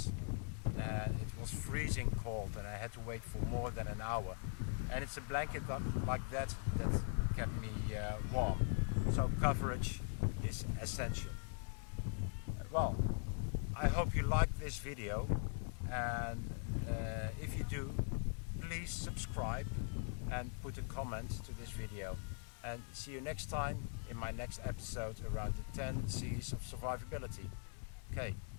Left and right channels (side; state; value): right; silent; 50 dB below the other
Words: It was freezing cold and I had to wait for more than an hour. And it's a blanket like that kept me warm. So coverage is essential. Well, I hope you liked this video, and if you do, please subscribe and put a comment to this video. And see you next time in my next episode around the 10 C's of survivability. Okay,